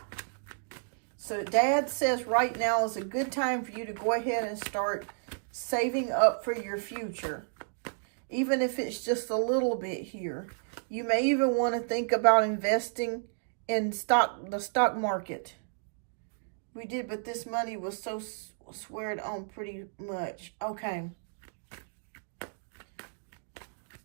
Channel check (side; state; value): left; silent; digital silence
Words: So Dad says right now is a good time for you to go ahead and start saving up for your future. Even if it's just a little bit here. You may even want to think about investing in the stock market. We did, but this money was so squared on pretty much. Okay.